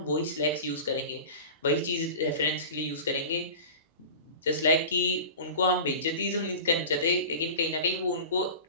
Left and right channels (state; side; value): inverted; both; correlation -0.35